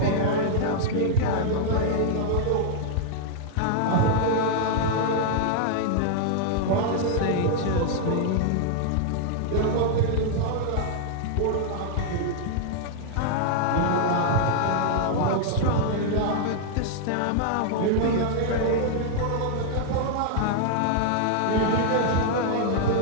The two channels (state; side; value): different; both; correlation -0.01